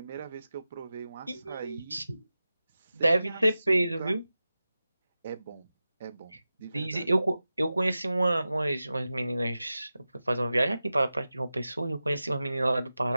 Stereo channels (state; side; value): inverted; both; correlation -0.94